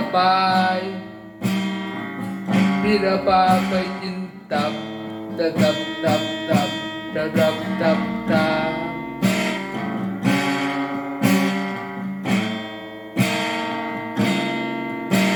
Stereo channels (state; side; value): identical; both; correlation 1.00